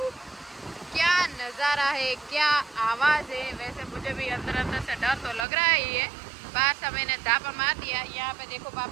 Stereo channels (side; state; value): left; drops out; at 5.5 s